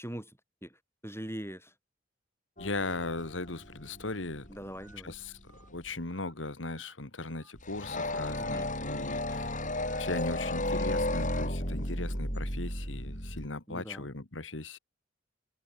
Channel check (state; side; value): normal; both; correlation 0.24